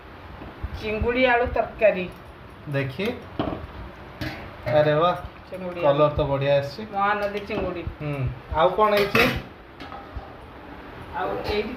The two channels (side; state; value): both; identical; correlation 1.00